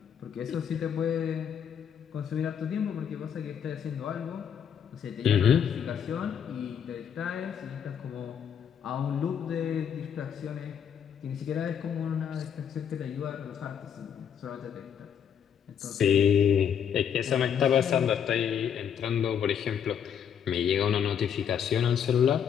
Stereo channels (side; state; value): right; quieter; 8.2 dB